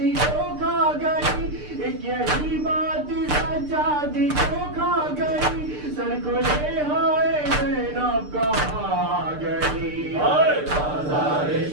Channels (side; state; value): left; late; 6.7 ms